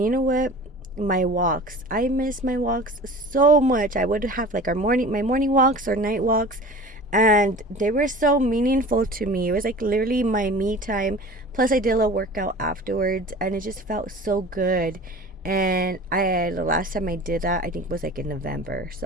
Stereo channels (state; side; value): normal; both; correlation 0.40